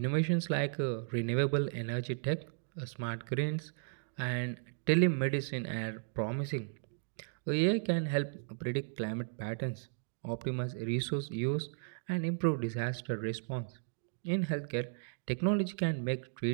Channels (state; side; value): silent; left; digital silence